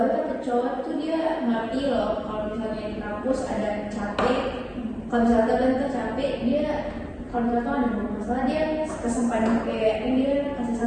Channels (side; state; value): both; identical; correlation 1.00